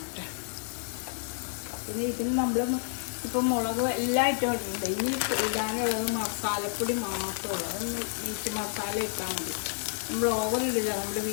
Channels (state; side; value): silent; right; 58 dB below the other